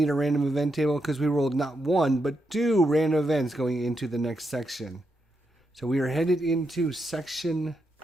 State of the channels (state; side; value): normal; both; correlation 0.83